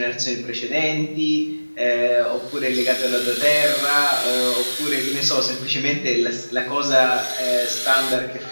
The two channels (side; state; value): both; inverted; correlation -1.00